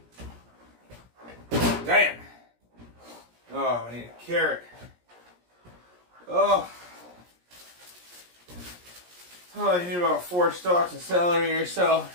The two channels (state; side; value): late; left; 17 ms